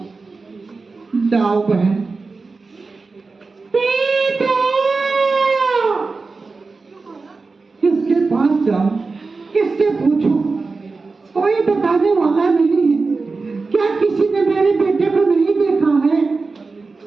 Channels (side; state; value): left; quieter; 4.1 dB